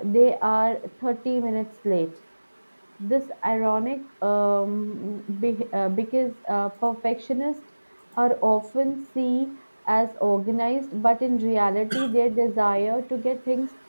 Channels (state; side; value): inverted; both; correlation -1.00